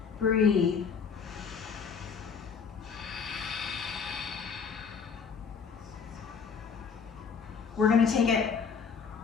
Breathe. We're going to take it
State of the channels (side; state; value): right; quieter; 6.1 dB